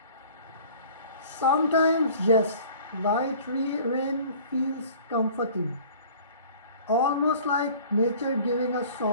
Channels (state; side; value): inverted; both; correlation -0.48